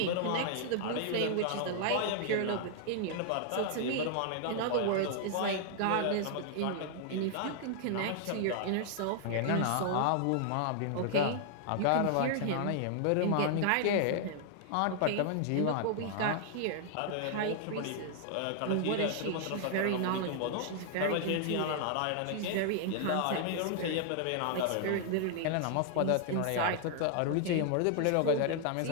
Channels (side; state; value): both; different; correlation 0.00